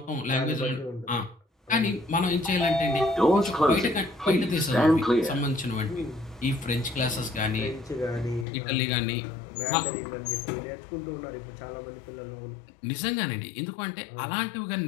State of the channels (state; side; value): drops out; right; at 8.5 s